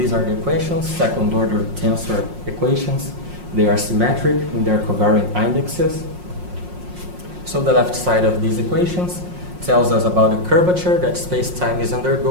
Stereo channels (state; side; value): late; left; 5.6 ms